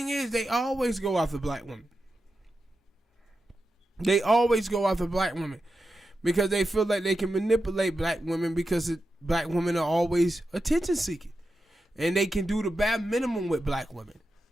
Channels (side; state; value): both; normal; correlation 0.89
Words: is, they always go after black women. They always go after black women because they feel like they can manipulate black women because black women are always attention seeking. And they can do the bare minimum with black women.